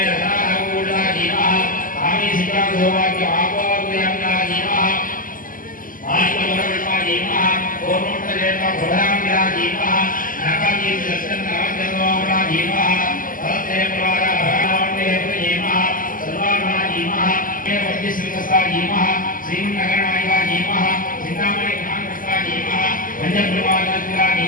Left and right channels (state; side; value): late; right; 0.40 ms